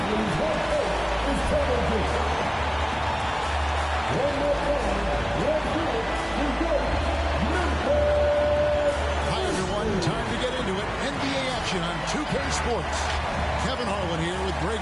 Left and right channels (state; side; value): identical; both; correlation 1.00